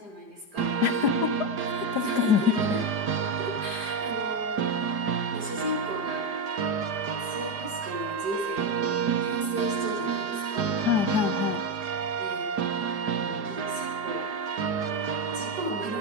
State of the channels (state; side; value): late; left; 4.9 ms